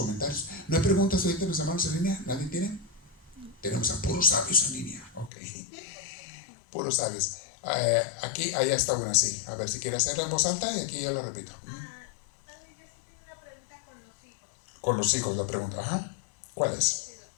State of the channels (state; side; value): drops out; right; at 5.3 s